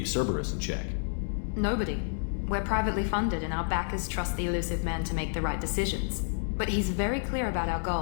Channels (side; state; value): right; silent; digital silence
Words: Cerberus in check? Nobody. We're privately funded and our backers trust the Elusive Man to make the right decisions. But he's very clear about our